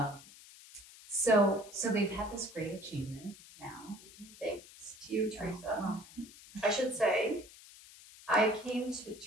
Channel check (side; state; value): left; noise; hiss, 19 dB below the sound